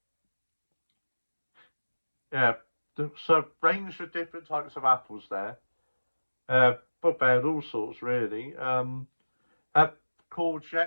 Yeah. So range of different types of apples there. But they had all sorts really.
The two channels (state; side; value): inverted; both; correlation -1.00